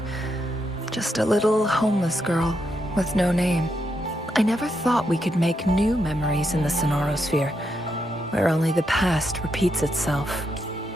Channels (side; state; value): both; normal; correlation 0.81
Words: Just a little homeless girl with no name. I never thought we could make new memories in the Sonarosphere, where only the past repeats itself.